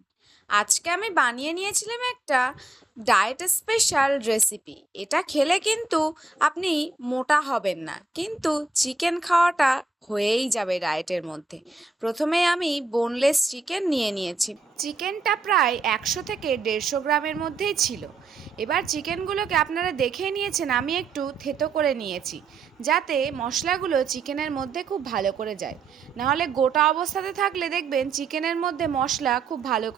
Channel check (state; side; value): quieter; left; 3.6 dB